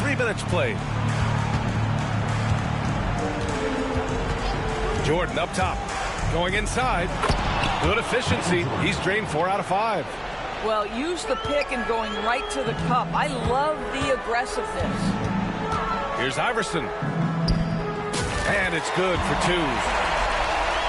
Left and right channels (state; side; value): identical; both; correlation 1.00